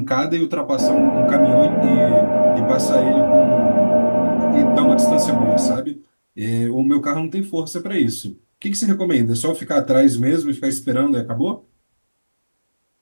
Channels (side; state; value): both; inverted; correlation -1.00